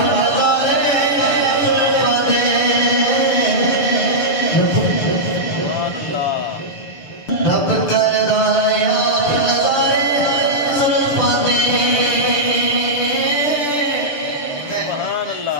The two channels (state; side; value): late; right; 6.8 ms